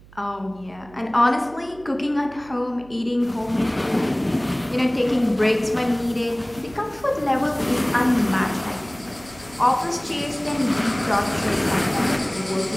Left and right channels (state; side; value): noise; right; hum, 23 dB below the sound